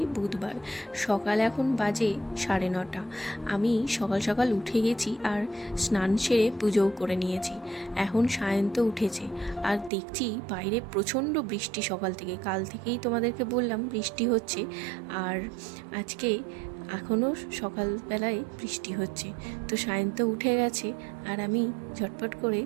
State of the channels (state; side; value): drops out; left; at 9.9 s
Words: বুধবার, সকাল এখন বাজে 9:30। আমি সকাল সকাল উঠে গেছি আর স্নান সেরে পুজোও করে নিয়েছি। এখন সায়ন্ত উঠেছে আর দেখছি বাইরে প্রচণ্ড বৃষ্টি সকাল থেকে। কাল থেকেই তোমাদেরকে বললাম বৃষ্টি হচ্ছে, আর আজকে এখনও সকালবেলায় বৃষ্টি হচ্ছে। তো সায়ন্ত উঠে গেছে আর আমি ঝটপট করে